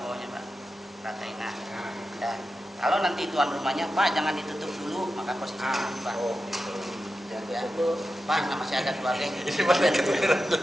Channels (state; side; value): normal; both; correlation 0.91